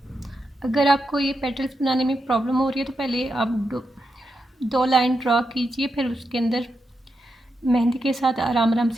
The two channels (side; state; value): both; normal; correlation 0.86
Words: अगर आपको ये पेटल्स बनाने में प्रॉब्लम हो रही है तो पहले आप दो लाइन ड्रा कीजिए, फिर उसके अंदर मेहंदी के साथ आराम आराम